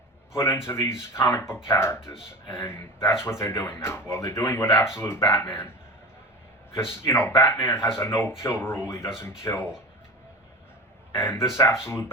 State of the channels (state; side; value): normal; both; correlation 0.30